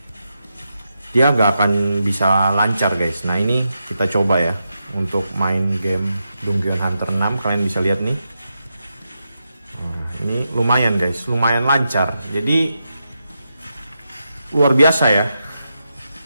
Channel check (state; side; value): inverted; both; correlation -0.86